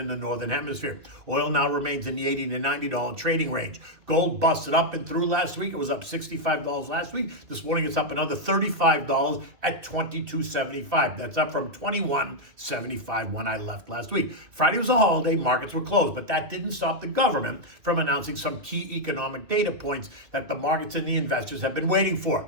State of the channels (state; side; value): late; left; 2.5 ms